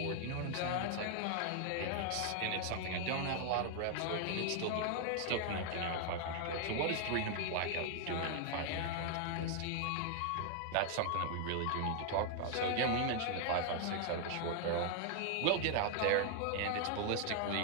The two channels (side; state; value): both; different; correlation 0.00